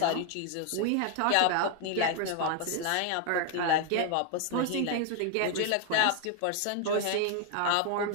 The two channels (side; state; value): both; different; correlation 0.00